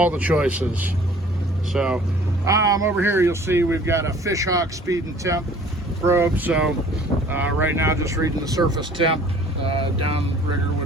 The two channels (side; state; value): both; normal; correlation 0.51